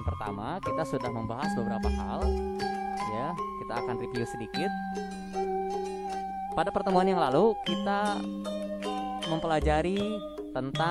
pertama kita sudah membahas beberapa hal. Ya, kita akan review sedikit. Pada pertemuan yang lalu kita mempelajari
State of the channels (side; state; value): both; identical; correlation 1.00